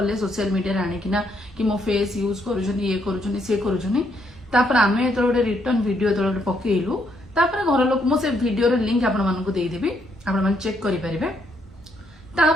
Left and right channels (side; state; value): both; normal; correlation 0.74